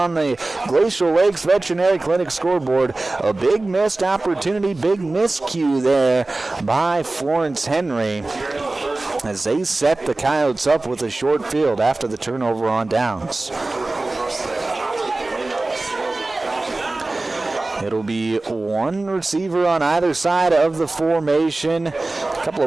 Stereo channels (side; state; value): left; quieter; 3.1 dB